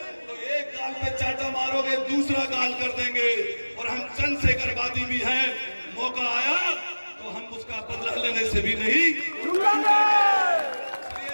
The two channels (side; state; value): both; inverted; correlation -1.00